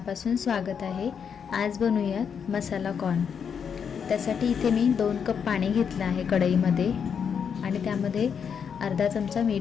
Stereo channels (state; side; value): quieter; right; 7.1 dB